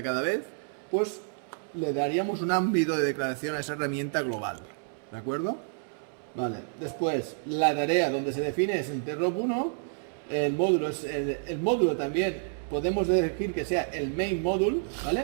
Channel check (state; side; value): silent; left; 58 dB below the other